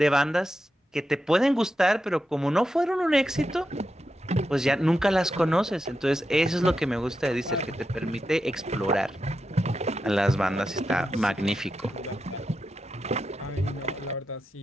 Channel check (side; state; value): both; normal; correlation 0.88